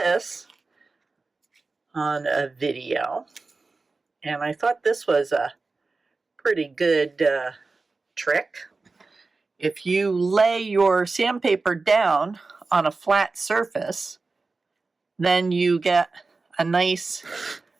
on a video and I thought this was a pretty good trick. If you lay your sandpaper down on a flat surface, then you get a nice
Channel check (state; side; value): quieter; left; 3.8 dB